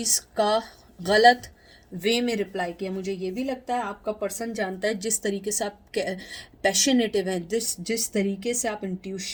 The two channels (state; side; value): identical; both; correlation 1.00